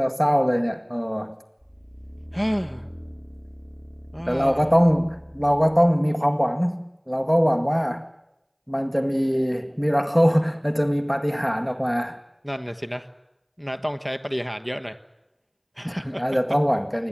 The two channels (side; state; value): both; identical; correlation 1.00